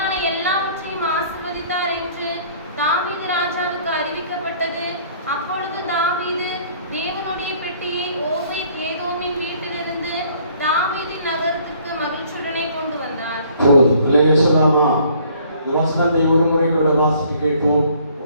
எல்லாவற்றையும் ஆசீர்வதித்தார் என்று தாவீது ராஜாவுக்கு அறிவிக்கப்பட்டது. அப்பொழுது தாவீது தேவனுடைய பெட்டியை ஓபேத் ஏதோமின் வீட்டிலிருந்து தாவீதின் நகரத்திற்கு மகிழ்ச்சியுடனே கொண்டு வந்தார். வசனத்தை ஒரு முறை கூட வாசிக்க கேட்போம்.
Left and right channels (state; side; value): inverted; both; correlation -0.58